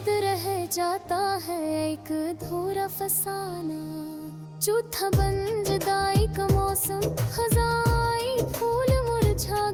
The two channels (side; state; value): both; identical; correlation 1.00